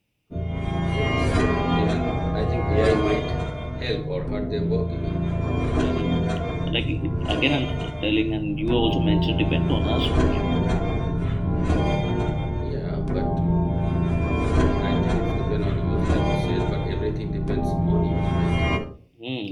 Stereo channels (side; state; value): both; identical; correlation 1.00